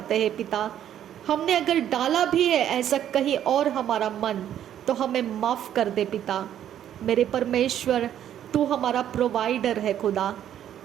हैं। पिता हमने अगर डाला भी है ऐसा कहीं और हमारा मन, तो हमें माफ़ कर दे पिता। मेरे परमेश्वर तू हमारा प्रोवाइडर है खुदा।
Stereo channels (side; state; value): left; quieter; 10.6 dB